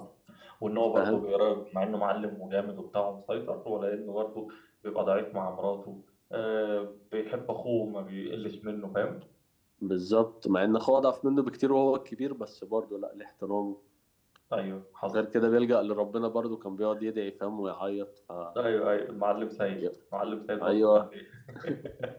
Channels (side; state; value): both; identical; correlation 1.00